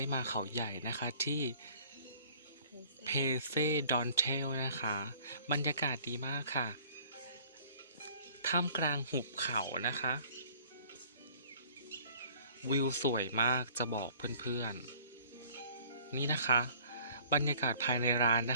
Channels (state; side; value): inverted; both; correlation -0.54